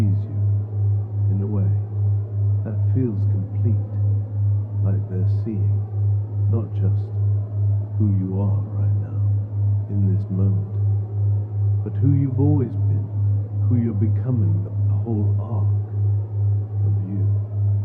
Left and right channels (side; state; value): both; identical; correlation 1.00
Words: you in a way that feels complete, like they're seeing, not just who you are right now, in this moment, but who you've always been, who you're becoming, the whole arc of you.